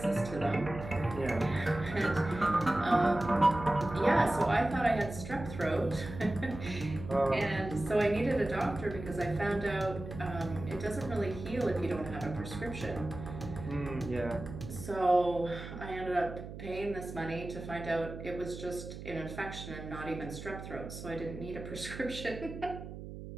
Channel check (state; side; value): noise; right; hum, 11 dB below the sound